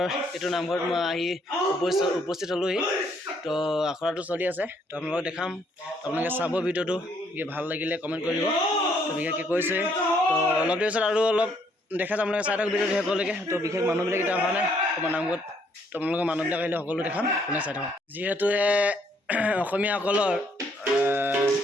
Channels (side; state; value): both; normal; correlation 0.68